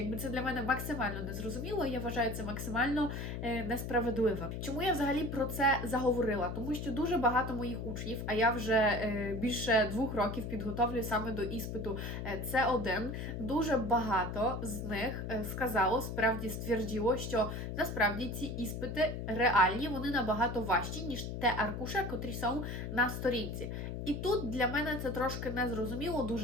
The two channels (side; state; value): left; noise; hum, 5 dB below the sound